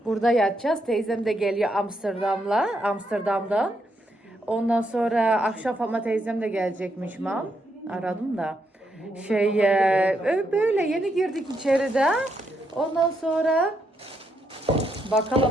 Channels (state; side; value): normal; both; correlation 0.78